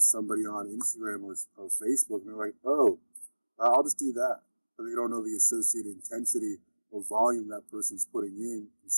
on Instagram or Facebook, and they're like, oh, I'll just do that. But they don't know the associated intensity or volume that person's putting in and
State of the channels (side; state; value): both; inverted; correlation -1.00